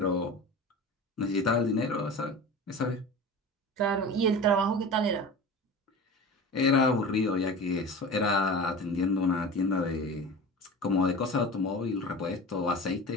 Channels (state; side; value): normal; both; correlation 0.33